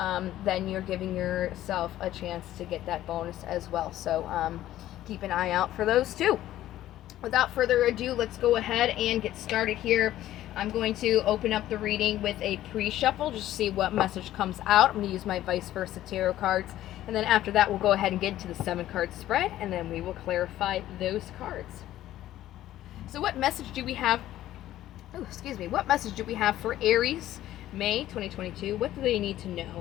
then you're giving yourself a chance to get that bonus as well. So keep an eye out for those too. Without further ado, let's go ahead and get started here. I'm going to open up the reading with a pre-shuffle just to see what message comes out. I'm going to use my vice versa tarot cards, and then after that we'll go ahead and get into the 7-card spread, and then we will clarify those cards. So what message do we have? What message do we have for Aries, May 2022? What do they need to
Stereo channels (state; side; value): quieter; right; 13.6 dB